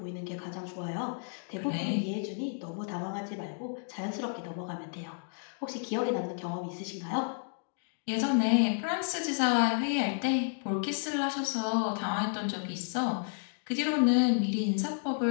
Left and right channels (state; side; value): silent; right; 57 dB below the other